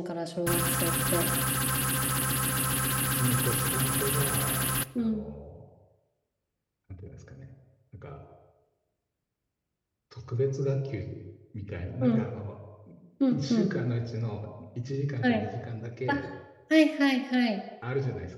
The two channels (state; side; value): identical; both; correlation 1.00